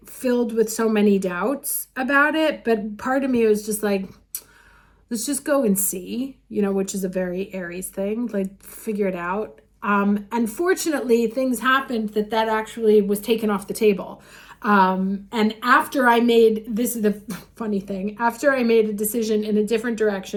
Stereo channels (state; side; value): identical; both; correlation 1.00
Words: filled with so many doubts about it, but part of me was just like, let's just go and see, which is a very Aries thing, like figure it out. Unfortunately, things happened that actually was taken off the table. And after I made, this is the funny thing, after I made a decision in a different